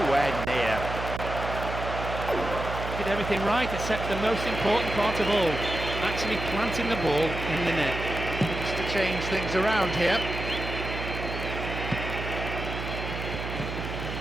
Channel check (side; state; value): right; noise; hum, 6 dB below the sound